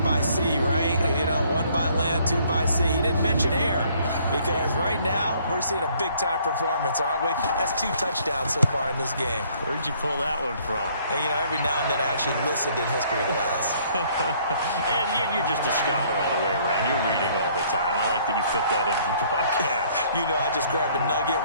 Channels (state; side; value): inverted; both; correlation -0.62